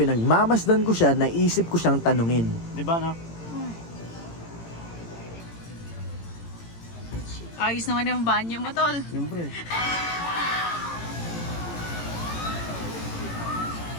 ko siya, naisip ko siyang tanungin. Di ba na? Ayos naman yung banyo mo, tol. Siyempre.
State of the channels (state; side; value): late; right; 18 ms